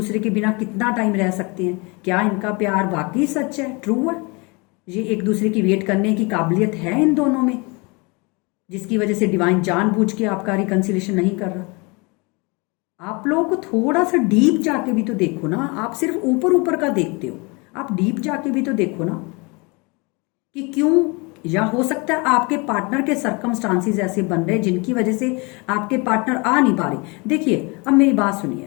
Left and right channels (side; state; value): right; quieter; 28.6 dB